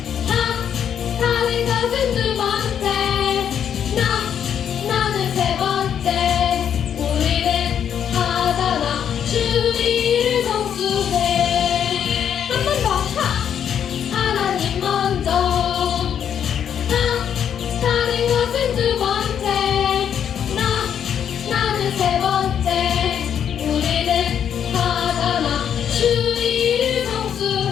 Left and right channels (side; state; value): right; quieter; 8.7 dB